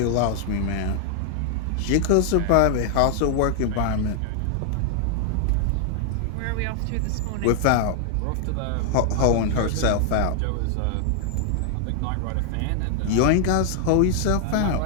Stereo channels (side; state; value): both; different; correlation 0.00